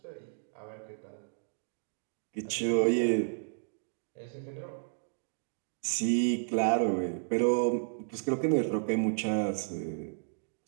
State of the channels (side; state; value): left; silent; digital silence